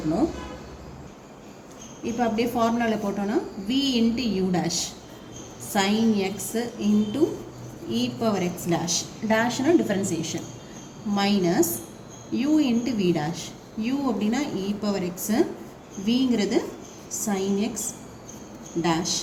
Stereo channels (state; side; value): identical; both; correlation 1.00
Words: இப்போ அப்படியே ஃபார்முலாவில் போட்டோன்னா v into u dash sin x into e⁻x dash டேஷ்னா differentiation minus u into v dash. u அப்படின்னா e⁻x, vங்கிறது sin x dash